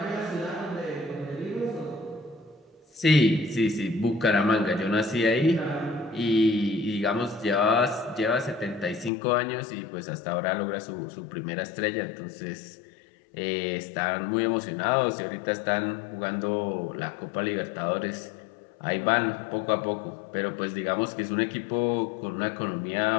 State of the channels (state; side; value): drops out; right; at 9.1 s